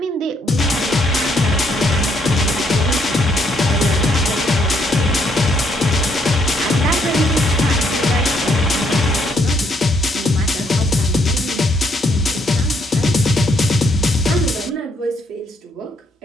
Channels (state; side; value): normal; both; correlation 0.71